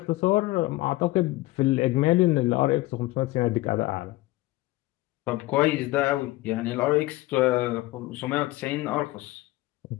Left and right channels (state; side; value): quieter; right; 18.7 dB